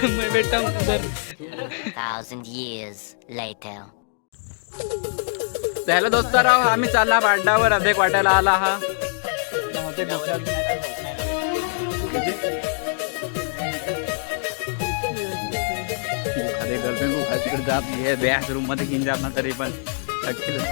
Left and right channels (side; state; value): right; silent; 63 dB below the other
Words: मैं बैठा हूँ उधर। 1,000 years later. हॅलो दोस्ताराव, आम्ही चालला पाड्यावर अधिक वाटायला आला हा. गर्लफ्रेंड को तिकडे जात घे बॅच रूम मध्ये घेऊन जात ना तरी पण